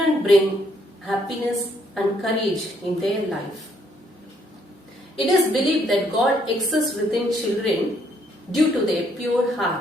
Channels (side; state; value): both; normal; correlation 0.69